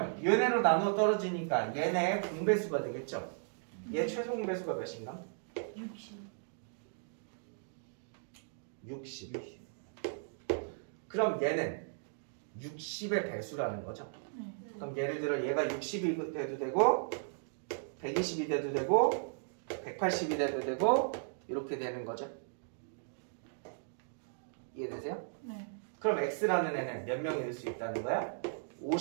얘네로 나눠 떨어지니까 얘네 공배수가 되겠죠. 얘 최소 공배수가 몇인가? 60. 그럼 얘는 60의 배수라는 거죠. 그럼 예를 들어 얘가 60이 돼도 되고 120이 돼도 되고 180이 돼도 되고 이렇게 되는 거죠. 이해되세요? 네. 그럼 X라는 애는 몇 명일 수 있다는 거야?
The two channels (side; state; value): left; silent; digital silence